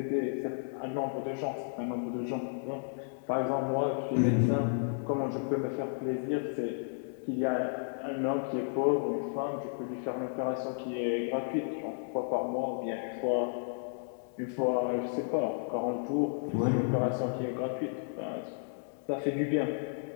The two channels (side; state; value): right; silent; digital silence